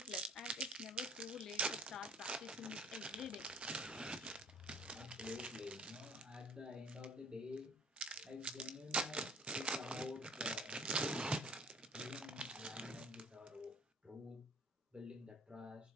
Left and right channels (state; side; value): normal; both; correlation 0.51